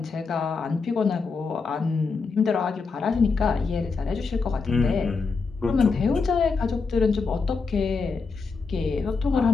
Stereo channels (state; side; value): quieter; right; 4.6 dB